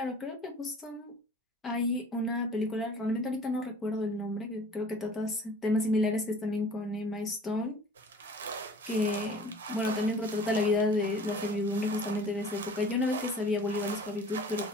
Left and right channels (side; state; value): both; normal; correlation 0.47